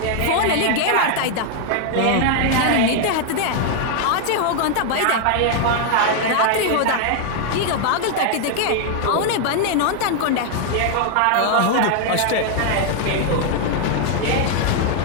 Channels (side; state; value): both; different; correlation 0.00